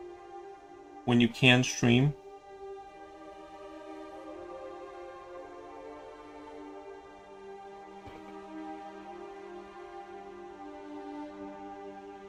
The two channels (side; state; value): both; identical; correlation 1.00